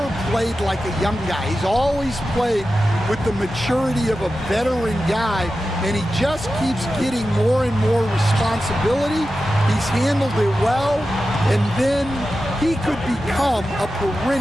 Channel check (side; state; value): both; normal; correlation 0.92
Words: played like a young guy. He's always played with the maturity of a veteran guy, and he just keeps getting more and more responsibility. He's handled it well, and then he could become a